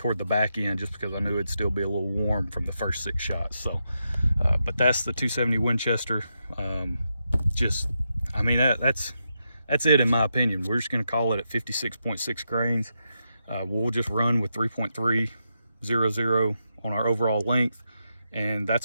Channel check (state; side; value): inverted; both; correlation -0.85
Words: the back end, just because I knew it'd still be a little warm from the first 6 shots. So, but that's the 270 Winchester. Just, I mean, that's it in my opinion. We're just gonna call it at 56.6 grains. We'll just run with 3.300 on our overall length, and